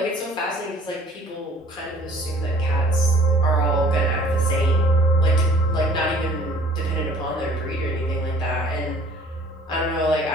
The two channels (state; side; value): normal; both; correlation 0.52